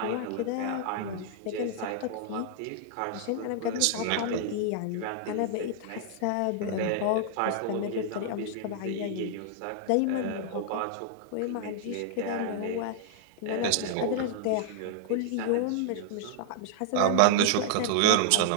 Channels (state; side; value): different; both; correlation -0.01